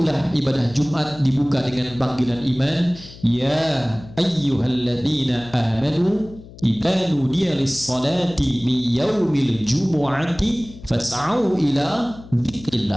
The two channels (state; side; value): noise; left; hum, 18 dB below the sound